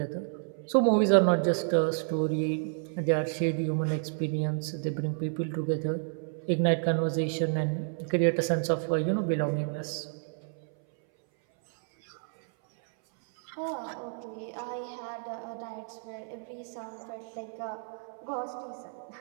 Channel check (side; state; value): left; silent; 58 dB below the other